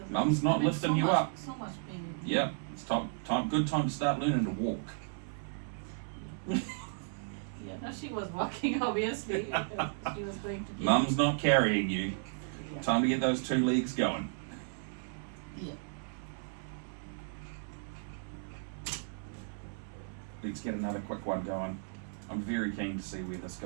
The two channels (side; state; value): left; silent; 55 dB below the other